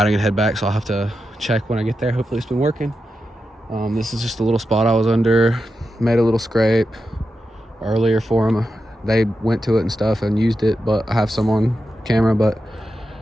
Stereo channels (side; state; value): both; normal; correlation 0.89